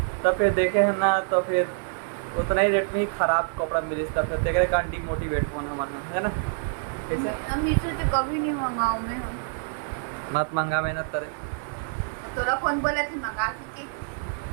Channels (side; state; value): left; silent; 61 dB below the other